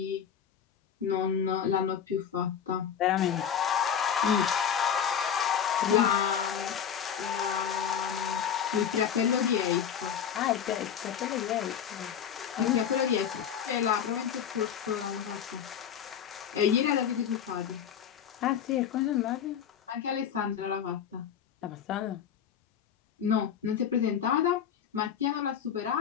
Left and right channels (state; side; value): quieter; right; 8.4 dB